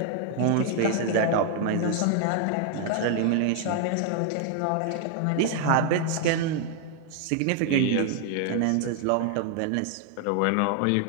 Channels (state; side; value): different; both; correlation 0.00